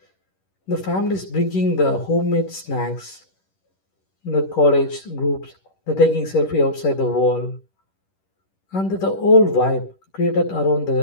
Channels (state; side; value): late; right; 10 ms